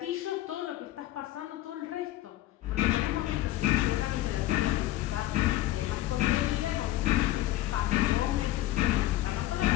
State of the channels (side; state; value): right; quieter; 15.4 dB